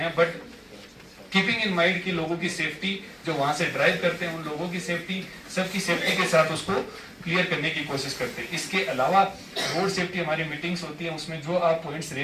बट कीपिंग इन माइंड कि लोगों की सेफ्टी, जो वहां से ड्राइव करते हैं उन लोगों की सेफ्टी, सबकी सेफ्टी के साथ उसको क्लियर करने की कोशिश करते हैं। इसके अलावा रोड सेफ्टी हमारी मीटिंग्स होती है, उसमें जो आप पॉइंट्स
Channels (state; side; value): identical; both; correlation 1.00